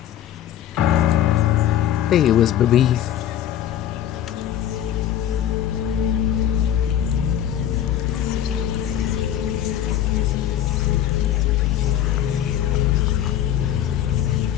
are. There you is, baby.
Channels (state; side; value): quieter; right; 10.9 dB